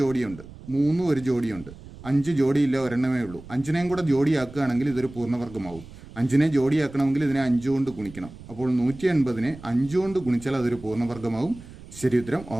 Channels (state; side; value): noise; right; rumble, 17 dB below the sound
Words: 3 ഒരു ജോഡിയുണ്ട്, 5 ജോഡിയില്ല, ഒരെണ്ണമേ ഉള്ളൂ. 5-നെയും കൂടെ ജോഡിയാക്കുകയാണെങ്കിൽ ഇതൊരു പൂർണ്ണവർഗമാവും. 5-നെ ജോഡിയാക്കണമെങ്കിൽ ഇതിനെ 5 കൊണ്ട് ഗുണിക്കണം. അപ്പോൾ 180-നെ 5 കൊണ്ട് ഗുണിച്ചാൽ അതൊരു പൂർണ്ണവർഗമാവും. ശരി ഉത്തരം